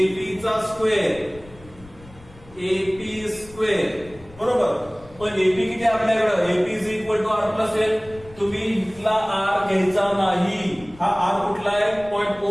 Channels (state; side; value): noise; left; rumble, 21 dB below the sound